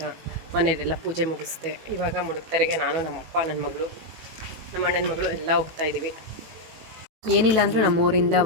ಮನೆಯಲ್ಲೆಲ್ಲ ಪೂಜೆ ಮುಗಿಸ್ದೆ. ಇವಾಗ ಮುಡುಕ್ತರೆಗೆ ನಾನು, ನಮ್ಮಪ್ಪ, ನನ್ನ ಮಗಳು, ನಮ್ಮ ಅಣ್ಣನ ಮಗಳು ಎಲ್ಲ ಹೋಗ್ತಾ ಇದ್ದೀವಿ. ಏನಿಲ್ಲ ಅಂದರೂ ನಮ್ಮೂರಿಂದ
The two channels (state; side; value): late; left; 18 ms